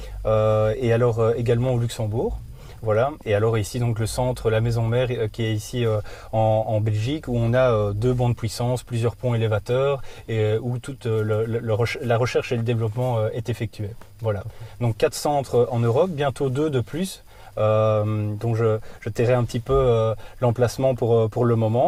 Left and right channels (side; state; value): both; identical; correlation 1.00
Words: et alors également au Luxembourg. Voilà. Et alors ici, donc le centre, la maison mère, qui est ici en Belgique, où on a 2 bancs de puissance, plusieurs ponts élévateurs, et où toute la recherche et le développement est effectué. Voilà. Donc 4 centres en Europe, bientôt 2 de plus. Donc je tairai un petit peu l'emplacement pour le